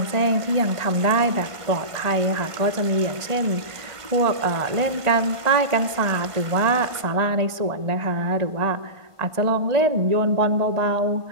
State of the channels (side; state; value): left; late; 1.5 ms